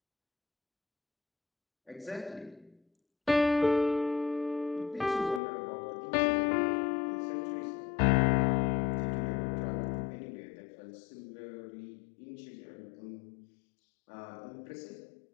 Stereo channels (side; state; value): right; drops out; at 5.4 s